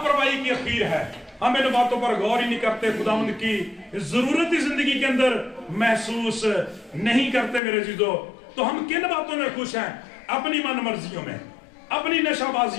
की अखीर है। हम इन बातों पर गौर ही नहीं करते, खुदावंद की जरूरत जिंदगी के अंदर महसूस नहीं करते मेरे जीजो। तो हम किन बातों में खुश हैं? अपनी मन मर्जियों में, अपनी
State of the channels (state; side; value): drops out; right; at 7.6 s